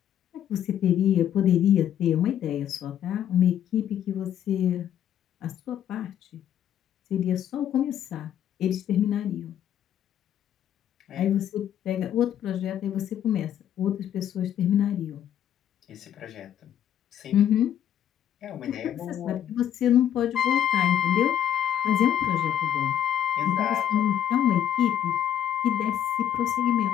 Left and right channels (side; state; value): right; quieter; 10.4 dB